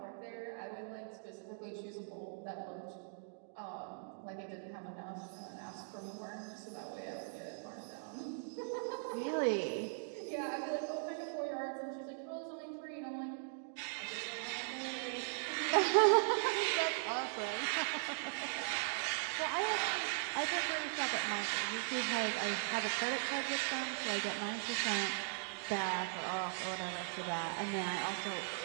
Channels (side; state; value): left; silent; digital silence